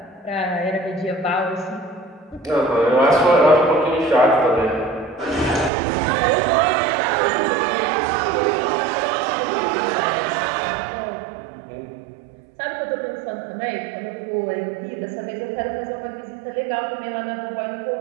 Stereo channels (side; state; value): left; drops out; at 5.7 s